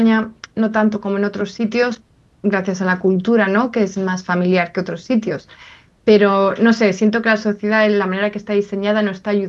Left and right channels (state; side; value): identical; both; correlation 1.00